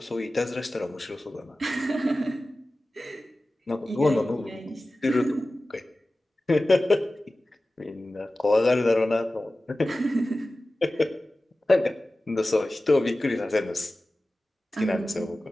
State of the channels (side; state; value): both; normal; correlation 0.96